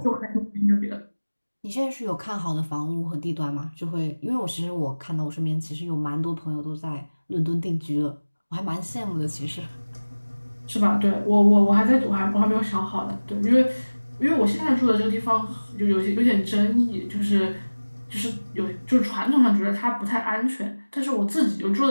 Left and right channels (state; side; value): inverted; both; correlation -1.00